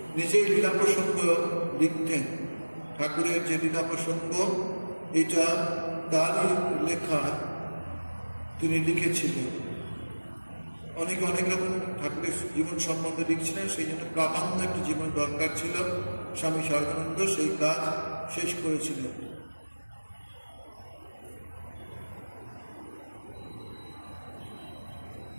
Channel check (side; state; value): both; inverted; correlation -1.00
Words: নিজেই লীলা প্রসঙ্গ লিখতেন। ঠাকুরের যে লীলা প্রসঙ্গ, এটা তারই লেখা, তিনি লিখেছিলেন। অনেকে অনেক রকম ঠাকুরের জীবন সম্বন্ধে লিখছিলেন, সেই জন্য প্রামাণ্য একটি জীবন দরকার ছিল। স্বামী সারদানন্দ সেই কাজ শেষ করেছিলেন।